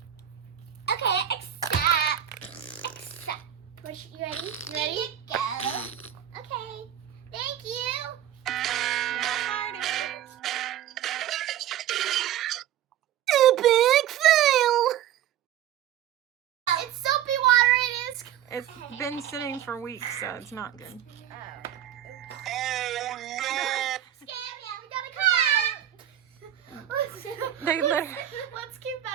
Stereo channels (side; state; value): left; quieter; 11.2 dB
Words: Okay, except You ready? You ready? Here you go. Okay. Thank you. Now fighting. Big fail. It's soapy water. It is. It's been sitting for weeks, so it's not good. They literally. Let's keep